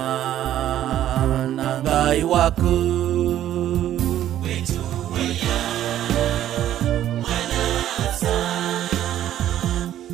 na Ngai waku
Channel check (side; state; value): left; quieter; 11.9 dB